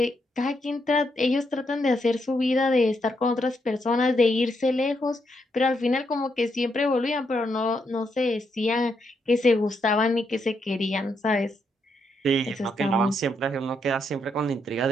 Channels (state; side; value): normal; both; correlation 0.78